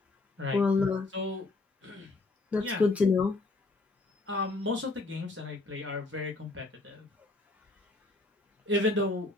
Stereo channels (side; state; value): right; quieter; 3.2 dB